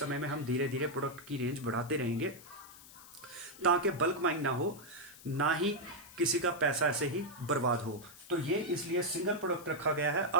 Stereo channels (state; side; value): noise; left; hiss, 19 dB below the sound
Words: में हम धीरे धीरे प्रोडक्ट की रेंज बढ़ाते रहेंगे ताकि बल्क बाइंग ना हो, ना ही किसी का पैसा ऐसे ही बर्बाद हो। तो ये इसलिए सिंगल प्रोडक्ट रखा गया है।